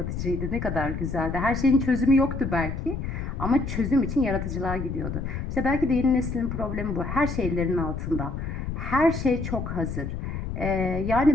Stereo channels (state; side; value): noise; left; rumble, 5 dB below the sound